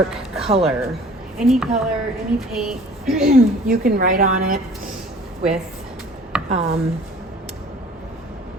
color. Any color, any paint, you can write on it with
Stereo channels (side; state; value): both; normal; correlation 0.49